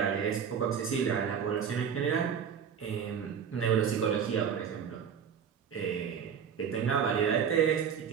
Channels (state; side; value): quieter; left; 7.5 dB